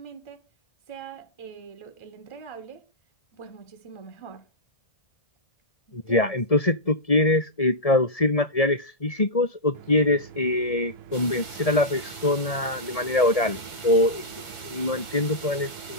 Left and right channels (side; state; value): right; late; 1.4 ms